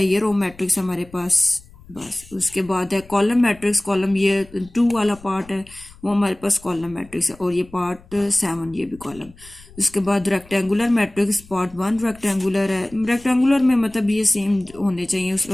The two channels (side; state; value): left; noise; rumble, 23 dB below the sound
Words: ये रो मैट्रिक्स हमारे पास बस। उसके बाद है कॉलम मैट्रिक्स। कॉलम ये 2 वाला पार्ट है, वो हमारे पास कॉलम मैट्रिक्स है। और ये पार्ट 7, ये भी कॉलम। उसके बाद रेक्टेंगुलर मैट्रिक्स पार्ट 1 रेक्टेंगुलर है। रेक्टेंगुलर में मतलब ये सेम होने चाहिए,